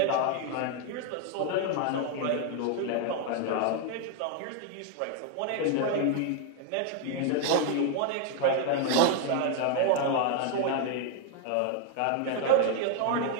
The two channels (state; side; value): different; both; correlation 0.00